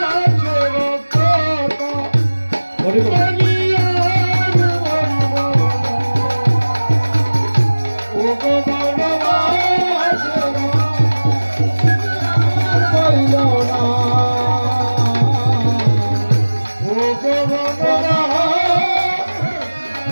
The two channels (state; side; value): inverted; both; correlation -1.00